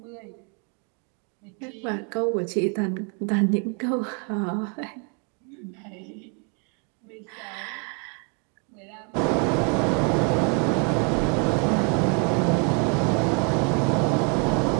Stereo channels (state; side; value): quieter; left; 36.2 dB